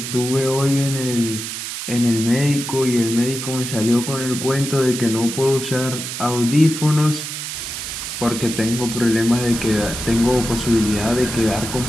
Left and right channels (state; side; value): noise; right; hiss, 6 dB below the sound